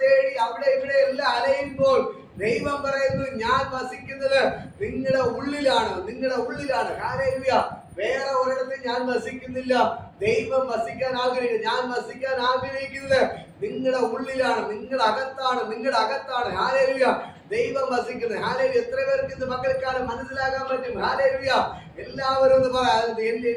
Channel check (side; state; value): both; identical; correlation 1.00